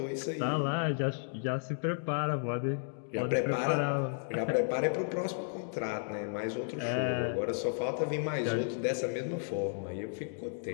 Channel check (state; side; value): silent; right; digital silence